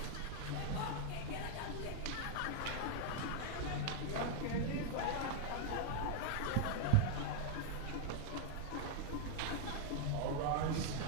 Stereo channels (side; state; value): both; different; correlation 0.00